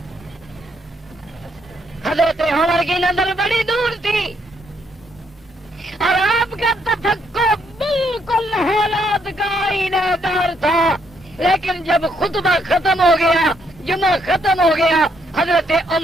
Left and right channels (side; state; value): both; normal; correlation 0.73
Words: حضرت عمر کی نظر بڑی دور تھی اور آپ کا تفکر بالکل حالات کا آئینہ دار تھا، لیکن جب خطبہ ختم ہو گیا، جمعہ ختم ہو گیا، حضرت